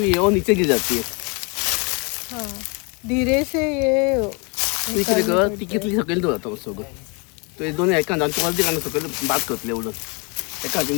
है वो नीचे गिर जाती है हाँ धीरे से ये तू इकडे कर ती कितली सकेल तो जातो सगळं तो हे दोन्ही ऐका जाण तू अर्धी काढणं सकेल बाद करतले एवढं एका हातीन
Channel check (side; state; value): right; quieter; 31.3 dB